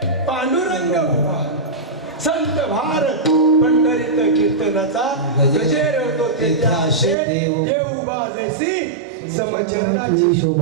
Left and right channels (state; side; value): drops out; left; at 7.2 s